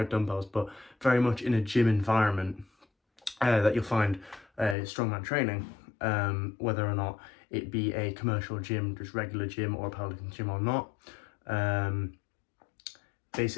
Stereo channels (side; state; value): right; drops out; at 4.8 s